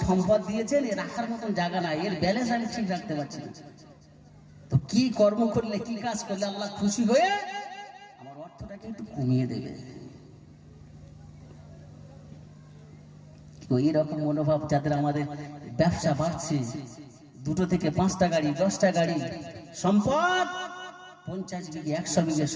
সম্পদ দিয়েছেন, এর রাখার মতন জায়গা নাই, এর ব্যালেন্স আমি ঠিক রাখতে পারছি না। তো কি কর্ম করলে, কি কাজ করলে আল্লাহ খুশি হয়ে আমার অর্থটাকে একটু কমিয়ে দেবে? তো এইরকম মনোভাব যাদের, আমাদের ব্যবসা বাড়ছে, 2 থেকে 5টা গাড়ি, 10টা গাড়ি, সম্পদ 50 বিঘে 100 বিঘে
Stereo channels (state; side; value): identical; both; correlation 1.00